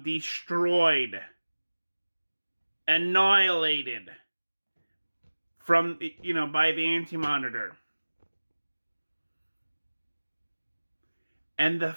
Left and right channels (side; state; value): both; inverted; correlation -1.00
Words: destroyed, annihilated from, by the Anti-Monitor. And the